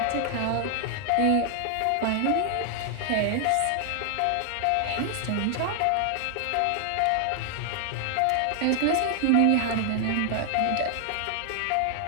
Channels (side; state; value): both; different; correlation 0.00